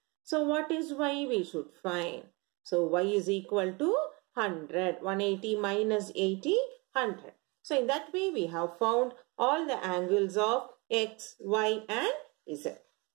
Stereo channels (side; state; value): left; quieter; 27.6 dB